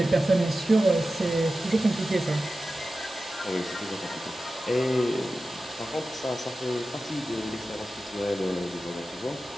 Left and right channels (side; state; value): both; normal; correlation 0.94